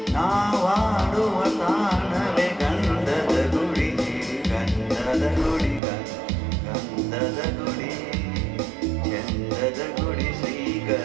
ನಾವಾಡುವ ತಾಣವೇ ಗಂಧದ ಗುಡಿ, ಗಂಧದ ಗುಡಿ, ಗಂಧದ ಗುಡಿ, ಚಂದದ ಗುಡಿ,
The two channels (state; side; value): drops out; left; at 5.8 s